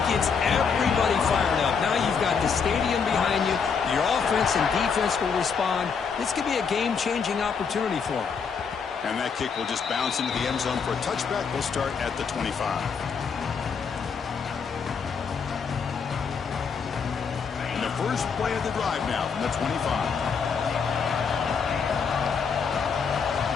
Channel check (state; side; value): quieter; right; 6.0 dB